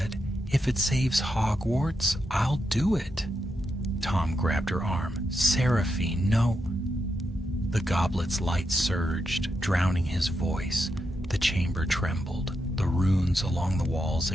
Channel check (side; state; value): both; normal; correlation 0.84